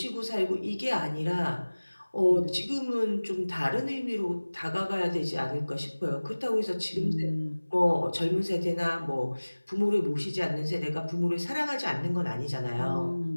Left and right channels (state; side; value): inverted; both; correlation -1.00